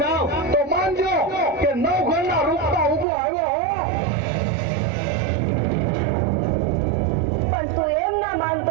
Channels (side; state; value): left; drops out; at 3.1 s